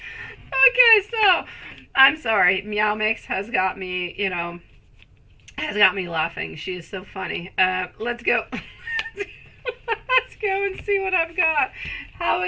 so I'm sorry. Meow Mix has got me, laughing. She is so funny. Let's go. Let's go and see what I've got. How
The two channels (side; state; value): both; identical; correlation 1.00